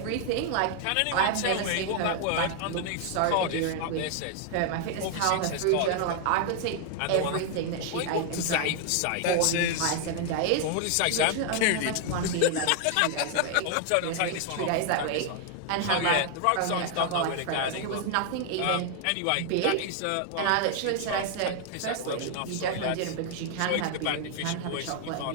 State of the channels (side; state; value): both; different; correlation 0.00